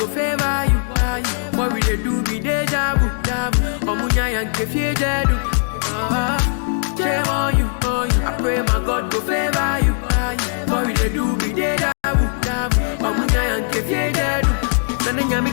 favor you. What will they do? Be deja vu. Omunya and kefie dedu. Shame on you, I pray my God go favor you. What will they do? Be deja vu. Omunya and kefie dedu. Nana nyami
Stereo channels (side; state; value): right; silent; digital silence